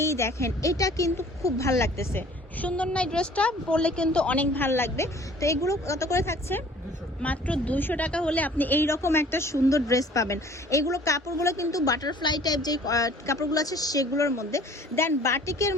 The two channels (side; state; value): both; normal; correlation 0.52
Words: দেখেন, এটা কিন্তু খুব ভাল লাগতেছে, সুন্দর না? ড্রেসটা পরলে কিন্তু অনেক ভাল লাগবে। তো এগুলো কত করে থাকছে? মাত্র 200 টাকা হলে আপনি এই রকম একটা সুন্দর ড্রেস পাবেন। এগুলো কাপড়গুলো কিন্তু বাটারফ্লাই টাইপ যে কাপড়গুলো আছে সেগুলোর মধ্যে। দেন বাটিকের